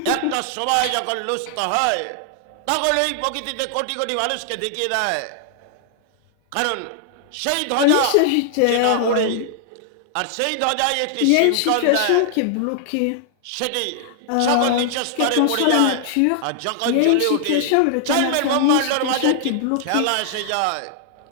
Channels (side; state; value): both; different; correlation -0.01